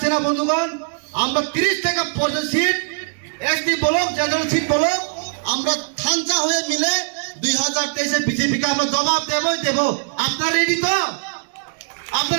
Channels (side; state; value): left; silent; digital silence